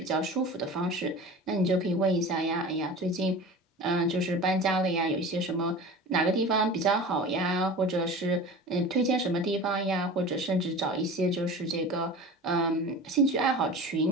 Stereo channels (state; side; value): normal; both; correlation 0.35